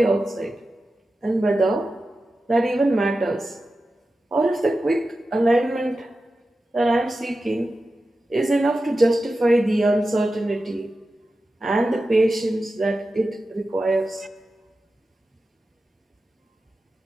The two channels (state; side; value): normal; both; correlation 0.93